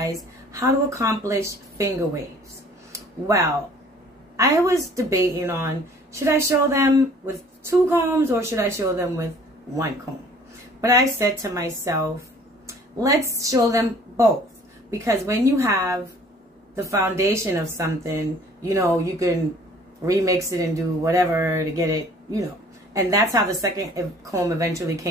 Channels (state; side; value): normal; both; correlation 0.53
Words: how to accomplish finger waves. Well, I was debating on, should I show them with 2 combs or should I show them with 1 comb? But I said to myself, let's show them both. Because when you have the foundation of something, you know, you can remix it and do whatever to get it, you know. And that's how the second comb eventually